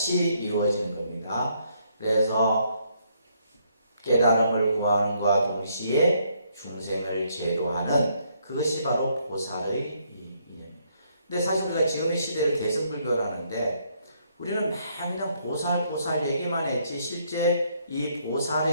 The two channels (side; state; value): both; inverted; correlation -0.71